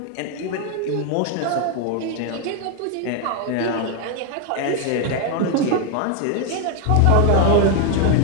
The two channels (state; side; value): different; both; correlation 0.01